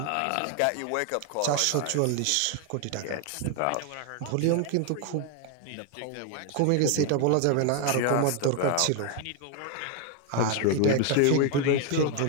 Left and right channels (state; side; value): different; both; correlation 0.01